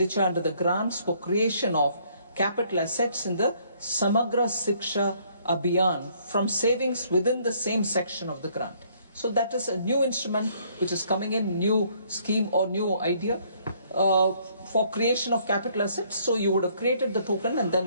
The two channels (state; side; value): inverted; both; correlation -0.65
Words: under the grants for creation of capital assets in the Samagra Shiksha Abhiyan from savings within the same section of the grant. So that is a new instrument which is coming in, new scheme or new idea for creation of capital assets. So you would have created the token and